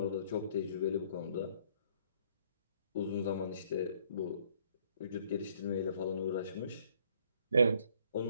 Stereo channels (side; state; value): both; inverted; correlation -0.63